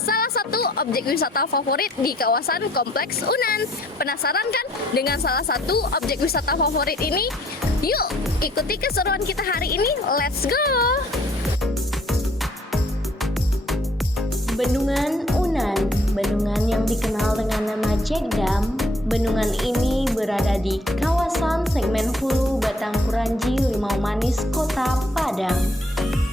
satu objek wisata favorit di kawasan Kompleks Unan. Penasaran kan dengan salah satu objek wisata favorit ini? Yuk, ikuti keseruan kita hari ini. Let's go! Bendungan Unan, bendungan yang dikenal dengan nama Cekdam. Bendungan ini berada di kawasan segmen Hulu Batang Kuranji, Limau Manis, Kota Padang.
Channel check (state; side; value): normal; both; correlation 0.62